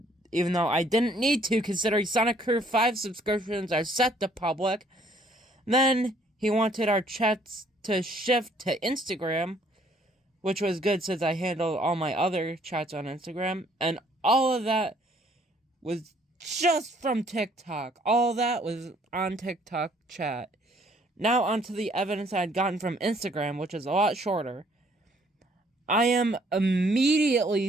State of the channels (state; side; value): normal; both; correlation 0.63